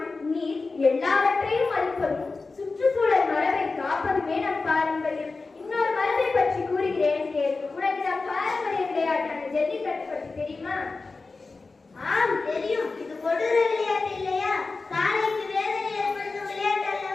நீர் எல்லாவற்றையும் மதிப்பதும் சுற்றுச்சூழல் மரபை காப்பதுமே நம் பாரம்பரியம். இன்னொரு மரபை பற்றி கூறுகிறேன் கேள். உனக்கு நம் பாரம்பரிய விளையாட்டான ஜல்லிக்கட்டு பற்றி தெரியுமா? ஆம், தெரியும். இது கொடூர விளையாட்டு இல்லையா? காலைக்கு வேதனை ஏற்படுத்தும் விளையாட்டு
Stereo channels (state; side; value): quieter; right; 3.9 dB